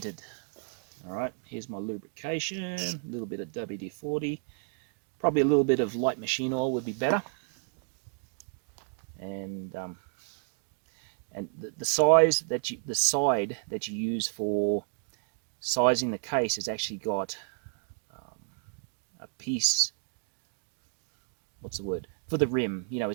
All right, here's my lubrication, a little bit of WD-40, probably a little bit of light machine oil would be better. And the side that you use for sizing the case has actually got a piece. What's the word for the rim? You know,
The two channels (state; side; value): silent; left; 56 dB below the other